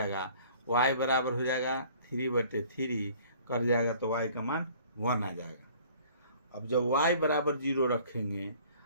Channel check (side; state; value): both; inverted; correlation -0.52